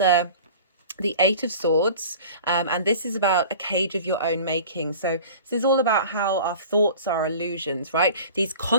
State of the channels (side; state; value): both; inverted; correlation -0.42